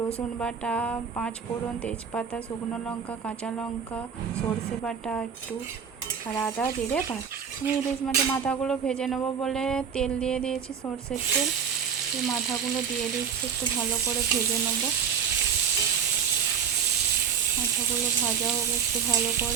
বাটা, পাঁচ ফোড়ন, তেজপাতা, শুকনো লঙ্কা, কাঁচা লঙ্কা, সর্ষে বাটা একটু, আর আদা জিরে বাটা। আমি ইলিশ মাছের মাথাগুলো ভেজে নেবো বলে তেল দিয়ে দিয়েছি, সর্ষের তেল। এই মাথাগুলো দিয়ে দিচ্ছি, একটু ভালো করে ভেজে নেবো। মাথাগুলো ভাজা হোক একটু ভালো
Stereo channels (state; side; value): quieter; left; 7.4 dB